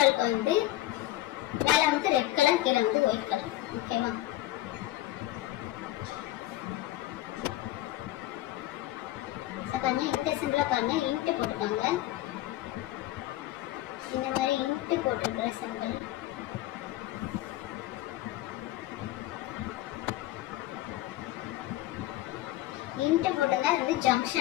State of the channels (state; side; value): quieter; right; 15.9 dB